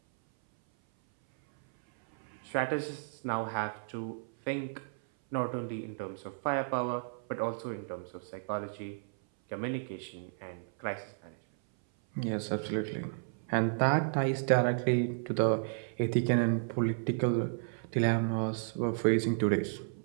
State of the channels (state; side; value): silent; left; 56 dB below the other